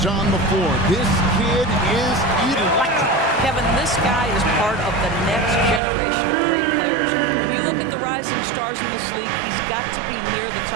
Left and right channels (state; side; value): drops out; left; at 5.8 s